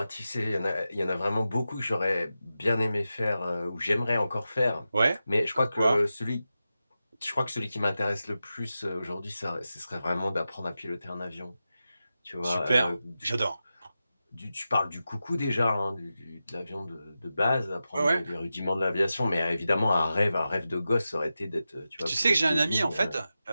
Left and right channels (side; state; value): both; inverted; correlation -0.92